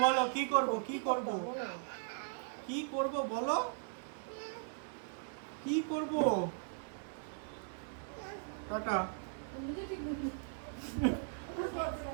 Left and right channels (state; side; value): silent; left; digital silence